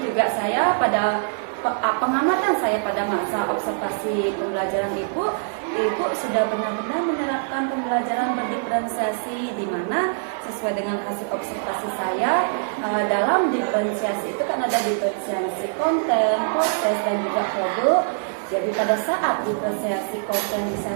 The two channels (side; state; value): left; silent; digital silence